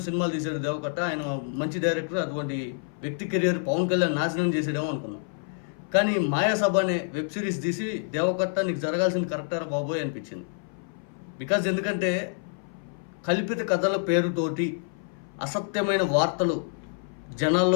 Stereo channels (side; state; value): right; silent; 57 dB below the other